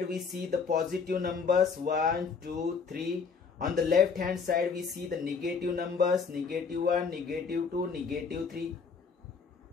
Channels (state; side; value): quieter; right; 5.5 dB